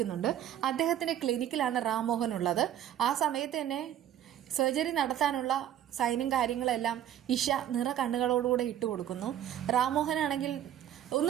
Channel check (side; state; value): left; quieter; 11.0 dB